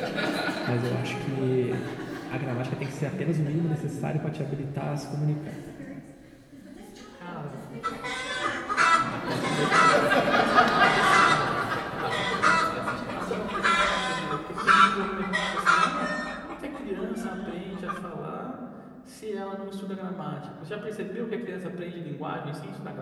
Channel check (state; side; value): identical; both; correlation 1.00